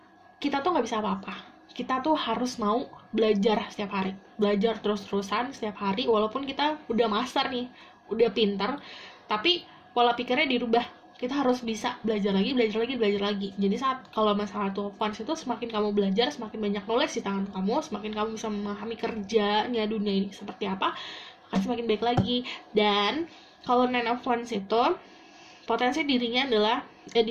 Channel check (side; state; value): both; identical; correlation 1.00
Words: kita tuh nggak bisa apa-apa. Kita tuh harus mau belajar setiap hari, belajar terus-terusan setiap hari, walaupun kita udah master nih, udah pintar, tapi pola pikirnya dirubah. Kita harus bisa belajar lagi. Jadi saat kalau masalah Two of Wands itu, semakin kamu belajar, semakin banyak knowledge di tangan kamu, semakin kamu bisa memahami kerjanya dunia ini seperti apa, akan semakin baik lagi. Dan kalau Nine of Wands itu potensi dirinya adalah